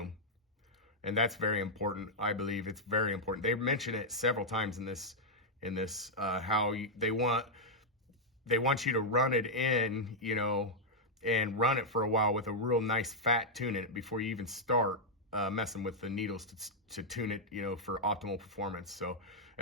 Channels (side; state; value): both; normal; correlation -0.04